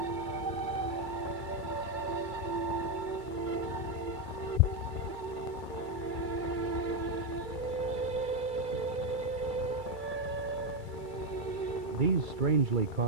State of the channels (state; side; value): late; left; 2.3 ms